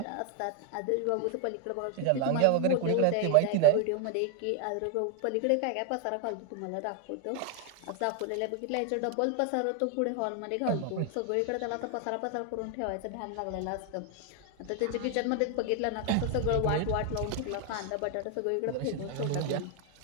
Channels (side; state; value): both; different; correlation 0.01